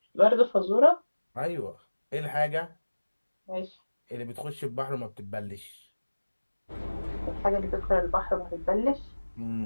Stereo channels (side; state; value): both; inverted; correlation -1.00